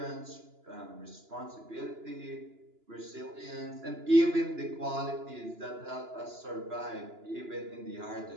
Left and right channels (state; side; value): late; left; 2.9 ms